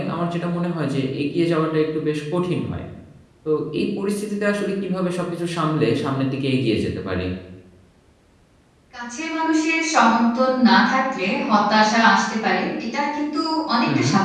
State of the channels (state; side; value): identical; both; correlation 1.00